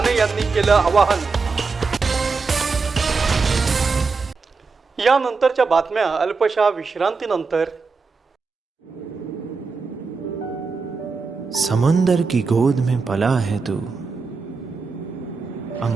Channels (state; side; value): quieter; left; 4.6 dB